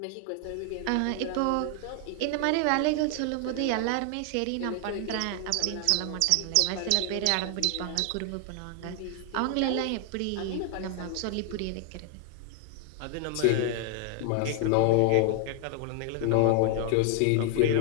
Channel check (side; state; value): both; different; correlation 0.00